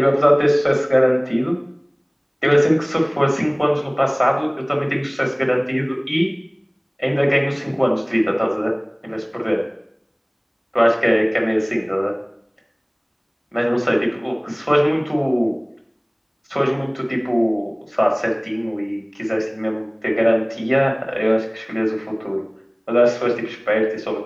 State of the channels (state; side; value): identical; both; correlation 1.00